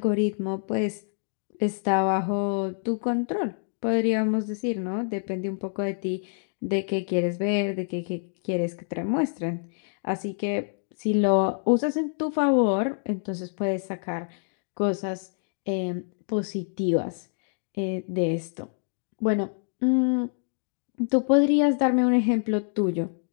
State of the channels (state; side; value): silent; right; digital silence